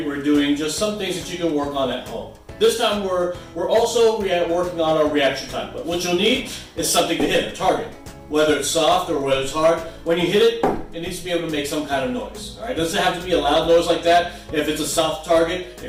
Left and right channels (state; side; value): identical; both; correlation 1.00